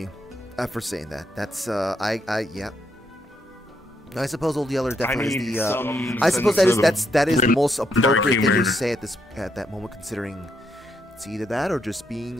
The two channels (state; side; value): normal; both; correlation 0.77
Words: for saying that. That's yeah. I suppose Old Yeller definitely is the. I suppose that is the most appropriate thing to say at that moment, considering it's either that or just being